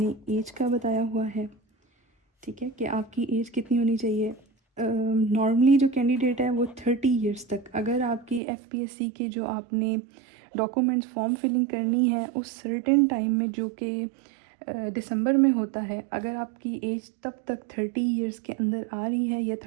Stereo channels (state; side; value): drops out; left; at 8.4 s